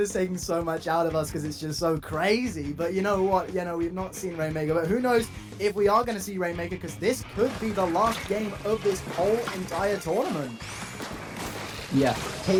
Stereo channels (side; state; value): both; identical; correlation 1.00